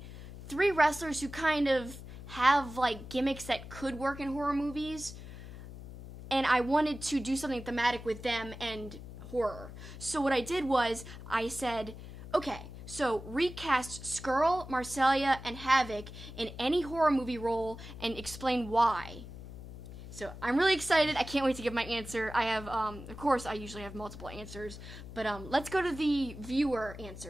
3 wrestlers who kind of have like gimmicks that could work in horror movies. And I wanted to do something thematic with them and horror. So what I did was I said, okay, so recast Scurll, Marcellia, and Havoc in any horror movie role and explain why. So I'm really excited. I can't wait to give my answer. I have, of course, I usually have multiple answers, but let's go to the viewer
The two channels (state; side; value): noise; left; hum, 13 dB below the sound